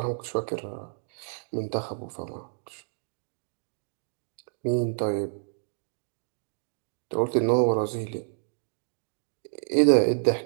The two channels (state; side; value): silent; left; digital silence